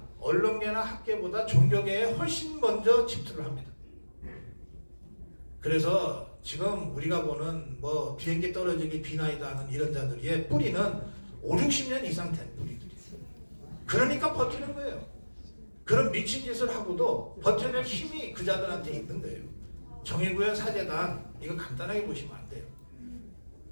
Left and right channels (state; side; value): inverted; both; correlation -1.00